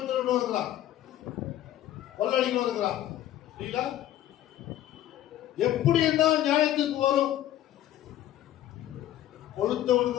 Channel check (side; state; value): right; quieter; 12.8 dB